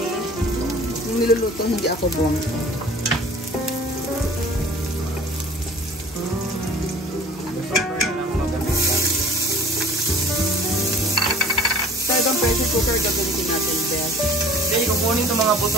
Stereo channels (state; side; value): normal; both; correlation 0.48